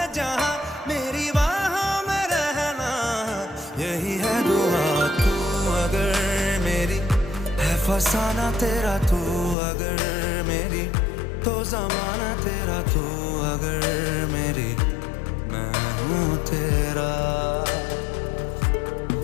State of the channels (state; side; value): drops out; right; at 9.6 s